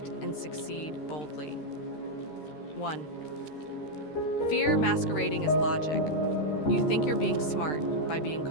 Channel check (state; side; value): late; right; 13 ms